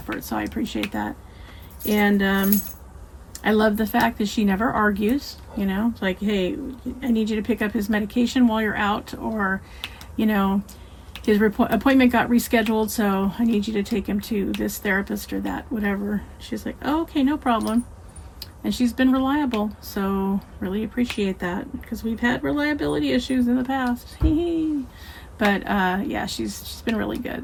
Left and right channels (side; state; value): both; identical; correlation 1.00